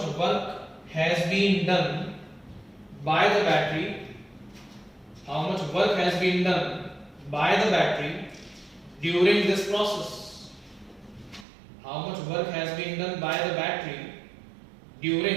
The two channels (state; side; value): drops out; left; at 11.5 s